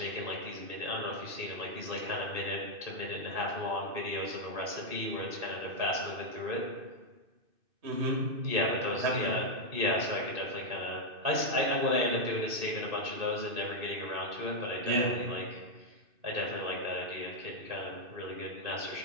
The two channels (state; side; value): late; left; 2.6 ms